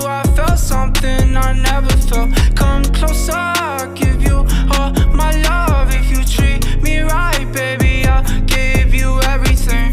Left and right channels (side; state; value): both; identical; correlation 1.00